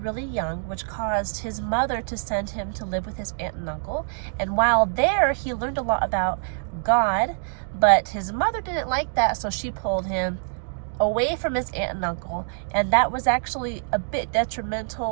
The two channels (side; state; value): left; silent; digital silence